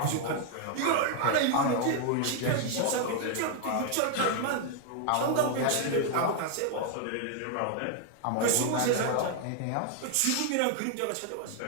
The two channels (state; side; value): different; both; correlation 0.00